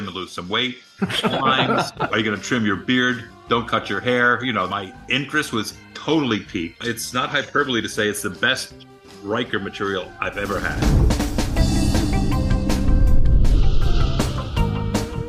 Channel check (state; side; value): identical; both; correlation 1.00